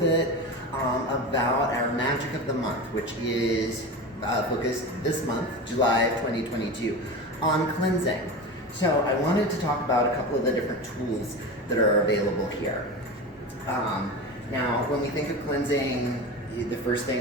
about our Magic of the Month, which is focused this month, July of 2022, on cleansing. So I wanted to talk about a couple of the different tools that are available here. Now, when we think of cleansing, the first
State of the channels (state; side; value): normal; both; correlation 0.27